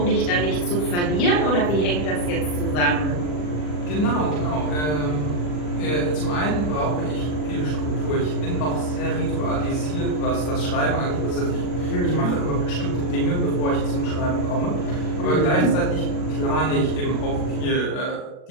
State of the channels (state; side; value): late; right; 40 ms